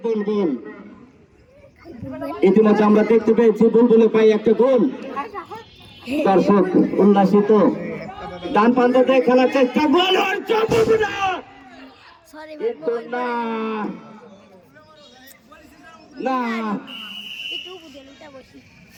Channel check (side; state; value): both; identical; correlation 1.00